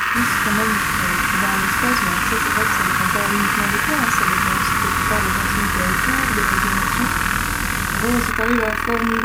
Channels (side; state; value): both; identical; correlation 1.00